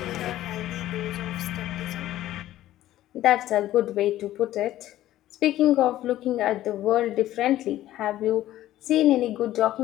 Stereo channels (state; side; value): quieter; right; 14.0 dB